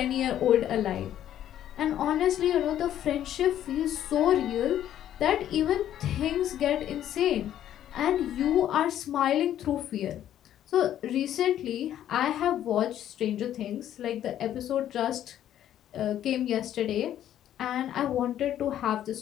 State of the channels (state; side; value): quieter; right; 11.3 dB